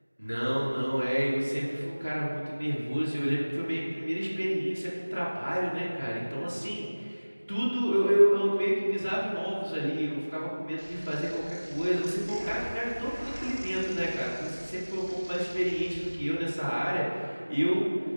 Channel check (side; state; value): both; inverted; correlation -1.00